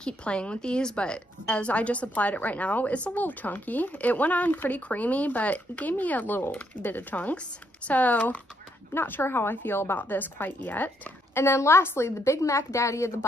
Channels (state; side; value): normal; both; correlation 0.74